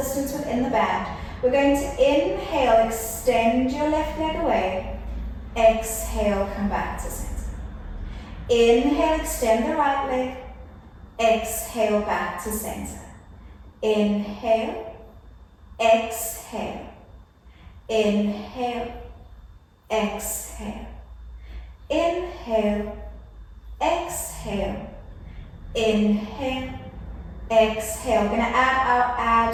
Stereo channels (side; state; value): both; identical; correlation 1.00